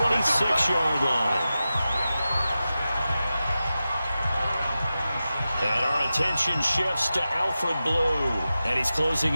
line. And our attention shifts to Alfred Blue. And he's closing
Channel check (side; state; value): both; inverted; correlation -0.93